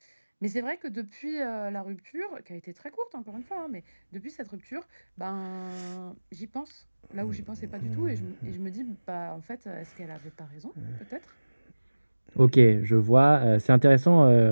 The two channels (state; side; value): inverted; both; correlation -1.00